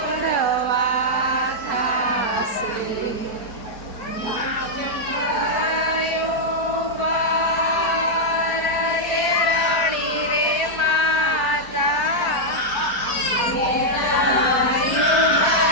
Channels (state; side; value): late; right; 4.6 ms